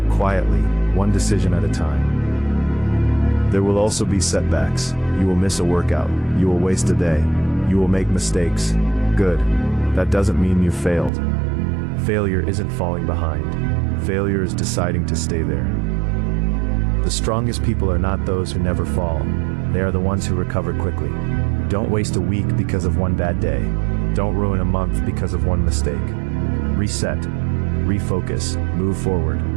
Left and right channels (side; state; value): left; drops out; at 11.1 s